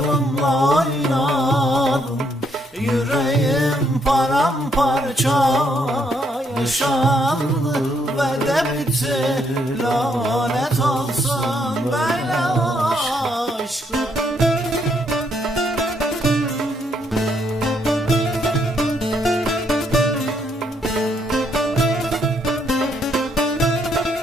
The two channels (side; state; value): both; normal; correlation 0.73